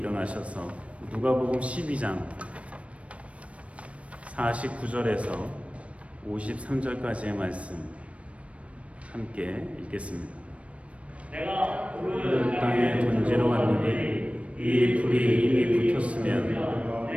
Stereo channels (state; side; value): late; left; 0.063 ms